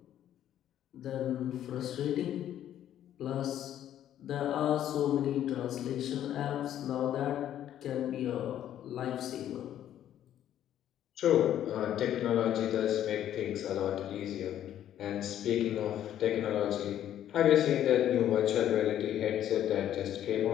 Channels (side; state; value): right; quieter; 11.2 dB